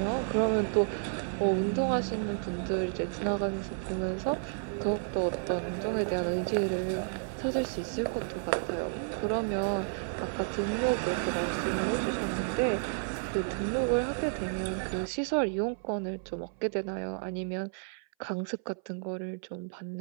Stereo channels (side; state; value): left; silent; 57 dB below the other